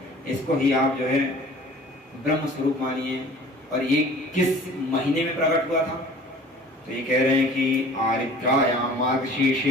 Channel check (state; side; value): normal; both; correlation 0.47